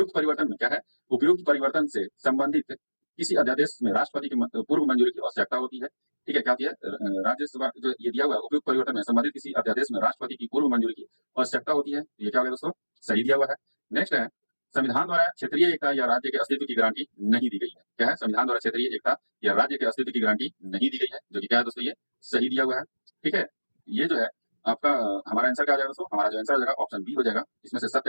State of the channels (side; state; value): both; inverted; correlation -1.00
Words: परिवर्तन में क्या है, उपयुक्त परिवर्तन से संबंधित किसी अध्यादेश में राष्ट्रपति की पूर्व मंजूरी की आवश्यकता होती है। ठीक है, क्या होती है, राज्यसभा जो ये दिया हुआ है, उपयुक्त परिवर्तन में संबंधित किसी अध्यादेश में राष्ट्रपति की पूर्व मंजूरी की आवश्यकता होती है, ये क्या होगा दोस्तों, सही दिया हुआ है। नेक्स्ट है, संविधान द्वारा क्षेत्रीय एकता या राज्य के अस्तित्व की गारंटी नहीं दी गई है। क्या है, संविधान द्वारा क्षेत्रीय एकता या राज्य के अस्तित्व की गारंटी नहीं दी गई है, जो कि क्या है दोस्तों, ये सही दिया हुआ है। ठीक है, ये जो है आपका हमारा आंसर क्या हो जाएगा दोस्तों, हमारा जो आंसर हो जाएगा ऑप्शन बी हो जाएगा। इसमें से